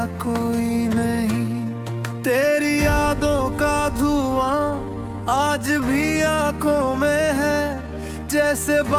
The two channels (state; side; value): identical; both; correlation 1.00